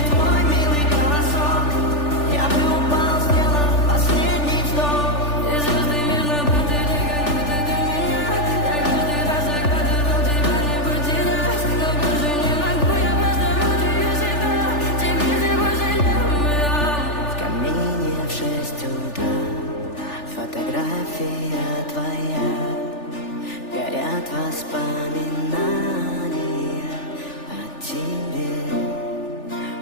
твой милый голосок, я бы упал, сделал последний вздох. И звезды мирно падали, как будто до меня. Я каждый раз загадывал тебя не потерять, но больше не могу, я просто мучаю себя. Теперь ты пожалел меня. В камине в 6 утра фотография твоя, горят воспоминания о тебе.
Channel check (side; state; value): right; late; 3.4 ms